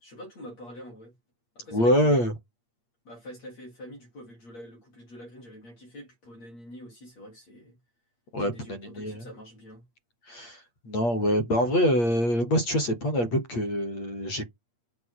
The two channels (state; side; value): late; right; 8.5 ms